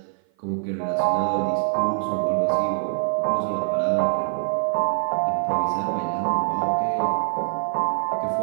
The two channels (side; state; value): left; silent; 55 dB below the other